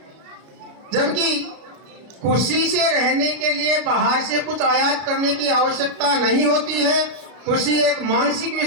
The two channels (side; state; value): left; late; 33 ms